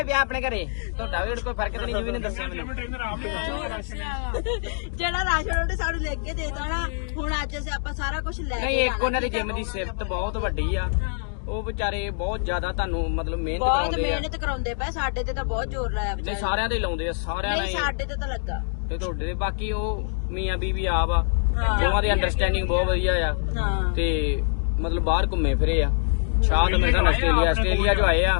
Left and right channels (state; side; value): silent; right; digital silence